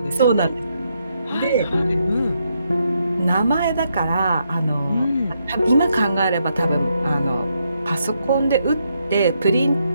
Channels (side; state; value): both; inverted; correlation -0.79